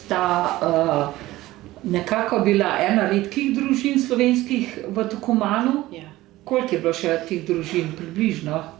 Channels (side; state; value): left; quieter; 17.1 dB